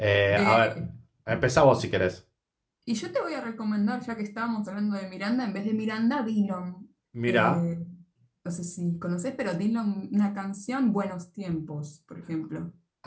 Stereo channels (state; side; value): identical; both; correlation 1.00